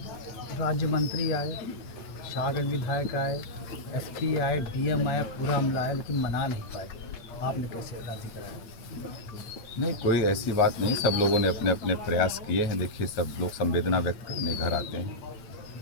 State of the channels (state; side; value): late; right; 9.5 ms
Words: राज्य मंत्री आए, शाहगढ़ विधायक आए, SP आए, DM आया, पूरा अमला आया, लेकिन मना नहीं पाए। आपने कैसे राजी कराया? नहीं, कोई ऐसी बात नहीं, सब लोगों ने अपने अपने प्रयास किए हैं। देखिए, सब लोग संवेदना व्यक्त करने घर आते हैं,